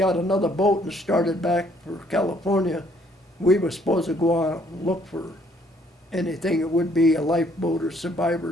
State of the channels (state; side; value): normal; both; correlation 0.64